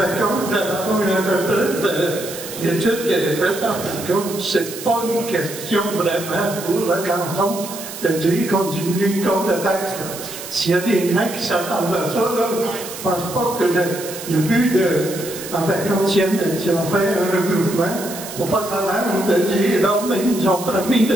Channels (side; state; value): right; noise; hiss, 11 dB below the sound